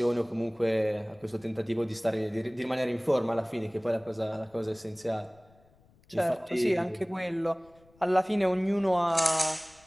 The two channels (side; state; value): left; noise; rumble, 30 dB below the sound